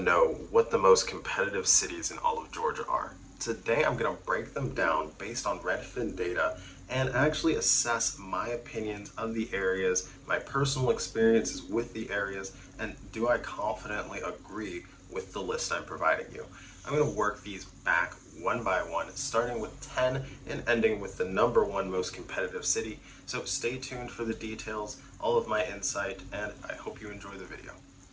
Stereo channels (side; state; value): both; identical; correlation 1.00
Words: what the most competitive cities in all of Georgia are. Today I'm going to break them down based on Redfin data and actually assess my opinions of the areas, my personal experiences with the areas, and do I confidently agree with the list I'm providing you. I'm going to work these back one by one, starting with 10 and ending with the number one most competitive city. So stay tuned for the details, all of my insight, and I hope you enjoy the video.